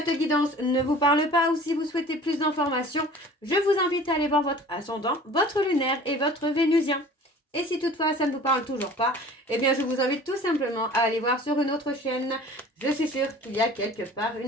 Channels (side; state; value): both; normal; correlation 0.45